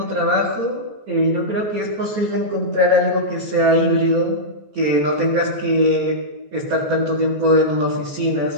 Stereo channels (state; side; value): late; left; 14 ms